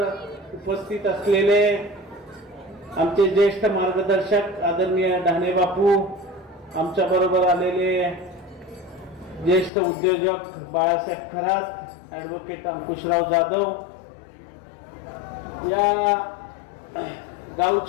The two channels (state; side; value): drops out; right; at 9.7 s